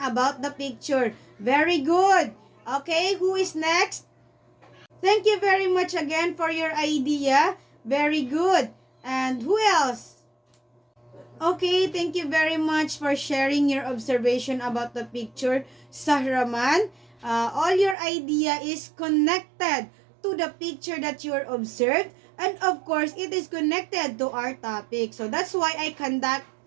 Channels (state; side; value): drops out; left; at 17.9 s